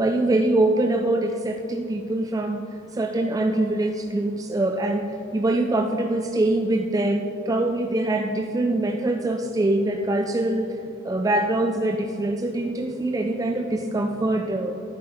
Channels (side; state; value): both; normal; correlation 0.70